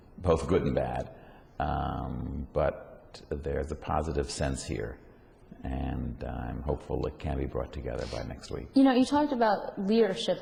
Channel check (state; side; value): identical; both; correlation 1.00